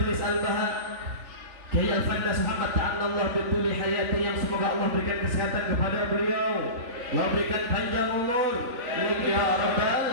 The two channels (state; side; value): late; left; 3.4 ms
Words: Al-Baha Kiai Al-Fandas Muhammad ta'ala bituli hayati, yang semoga Allah berikan kesehatan kepada beliau, Allah berikan panjang umur, ya rabbal